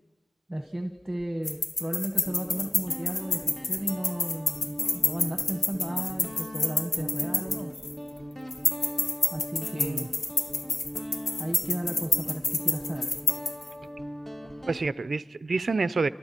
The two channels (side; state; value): both; normal; correlation 0.88